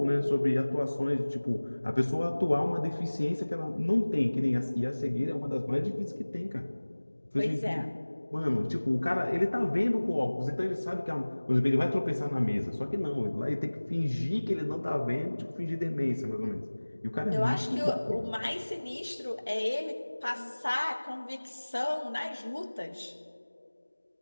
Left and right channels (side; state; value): both; inverted; correlation -1.00